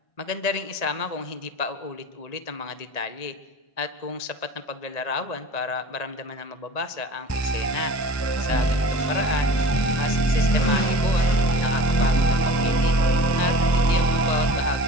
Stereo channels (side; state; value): right; late; 1.8 ms